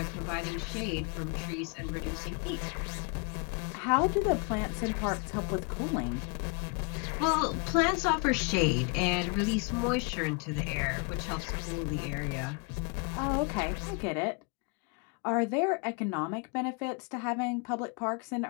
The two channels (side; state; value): right; quieter; 32.2 dB